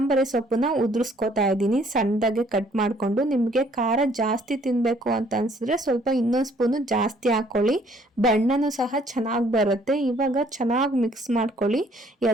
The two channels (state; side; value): normal; both; correlation 0.62